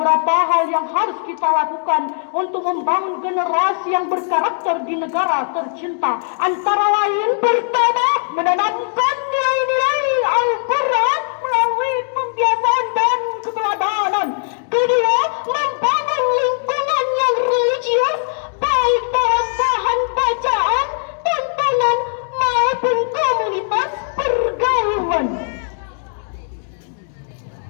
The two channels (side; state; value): right; silent; digital silence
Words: hal yang harus kita lakukan untuk membangun generasi yang berkarakter di negara tercinta. Antara lain, pertama, menanamkan nilai-nilai Al-Quran melalui pembiasaan dan keterampilan